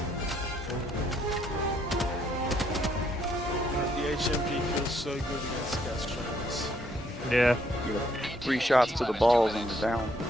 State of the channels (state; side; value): normal; both; correlation 0.70